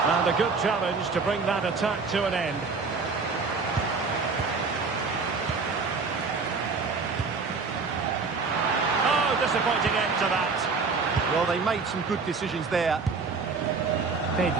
And a good challenge to bring that attack to an end. Disappointing end to that. Well, they made some good decisions there.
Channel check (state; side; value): quieter; left; 4.6 dB